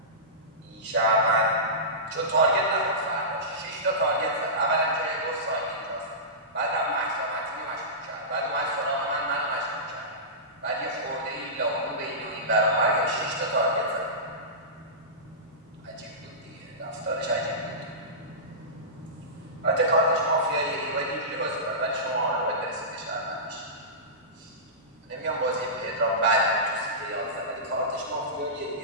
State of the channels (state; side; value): normal; both; correlation -0.20